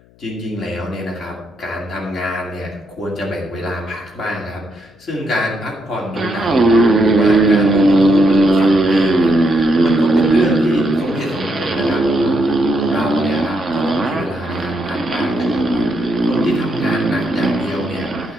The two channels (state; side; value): noise; left; hum, 30 dB below the sound